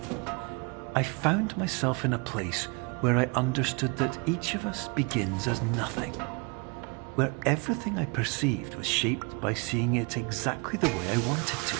I found myself in a place where I understood that each of us begins as nothing, where everything I perceived was shaped by seeing it exactly the way I wanted to.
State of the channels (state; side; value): quieter; left; 32.0 dB